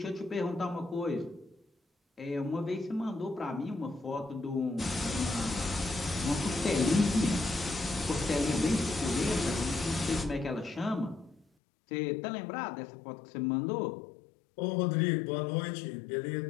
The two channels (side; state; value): right; drops out; at 11.5 s